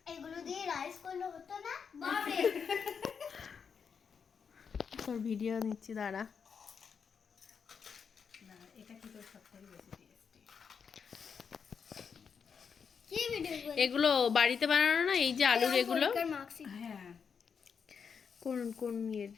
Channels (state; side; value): quieter; right; 6.4 dB